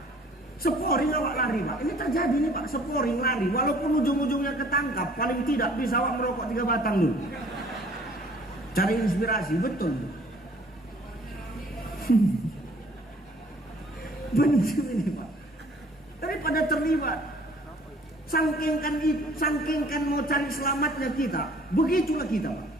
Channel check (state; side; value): normal; both; correlation 0.55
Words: Sporing awak lari Pak. Ini terjadi nih Pak, sporing lari. Walaupun ujung-ujungnya ketangkap, paling tidak bisa awak merokok 3 batang dulu. Cari inspirasi, betul. Benar ini Pak. Daripada terlibat, sangkingkan mau cari selamatnya kita, begitulah kita Pak.